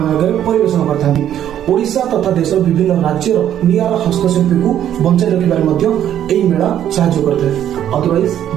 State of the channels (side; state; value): left; quieter; 10.7 dB